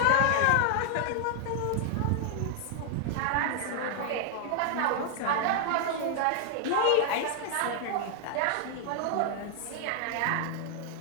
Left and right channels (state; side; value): different; both; correlation 0.00